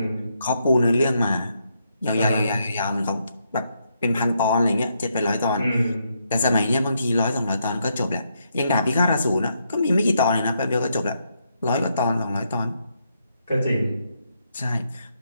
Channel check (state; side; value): inverted; both; correlation -0.78